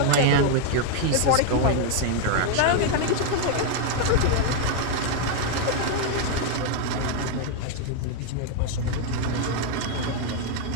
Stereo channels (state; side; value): different; both; correlation 0.00